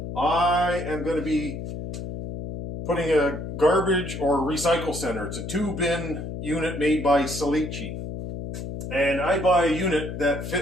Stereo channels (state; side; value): noise; left; hum, 7 dB below the sound